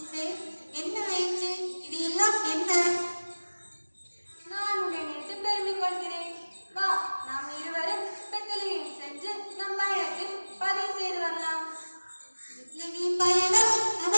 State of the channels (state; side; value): inverted; both; correlation -1.00